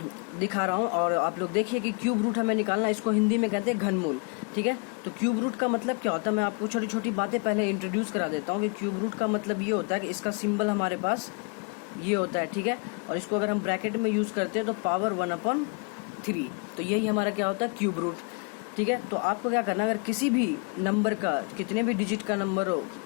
दिखा रहा हूँ। और आप लोग देखिए कि क्यूब रूट हमें निकालना, इसको हिंदी में कहते हैं घनमूल। ठीक है, तो क्यूब रूट का मतलब क्या होता है, मैं आपको छोटी छोटी बातें पहले इंट्रोड्यूस करा देता हूँ कि क्यूब रूट का मतलब ये होता है कि इसका सिंबल हमारे पास ये होता है। ठीक है, और इसको अगर हम ब्रैकेट में यूज करते हैं तो पावर 1/3, तो यही हमारा क्या होता है क्यूब रूट। ठीक है, तो आपको क्या करना है, अगर किसी भी नंबर का कितने भी डिजिट का नंबर हो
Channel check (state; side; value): quieter; right; 33.6 dB